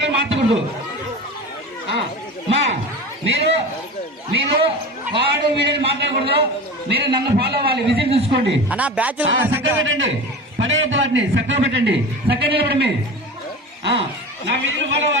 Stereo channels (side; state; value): both; normal; correlation 0.31